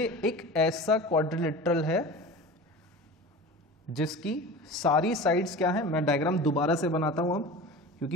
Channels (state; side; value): normal; both; correlation 0.34